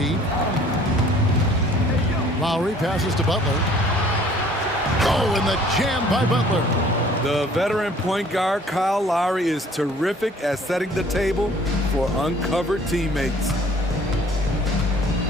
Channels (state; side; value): normal; both; correlation 0.54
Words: Lowry passes to Butler. Oh, and the jam by Butler. The veteran point guard Kyle Lowry is terrific at setting the table for uncovered teammates.